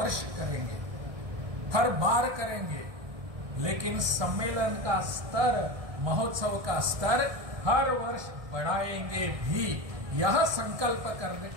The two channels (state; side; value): late; left; 1.6 ms